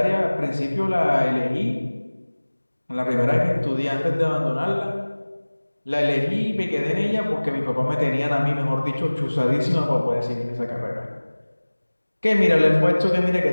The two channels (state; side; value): inverted; both; correlation -1.00